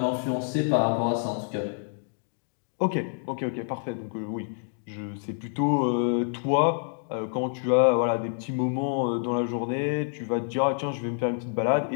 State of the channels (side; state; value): right; silent; digital silence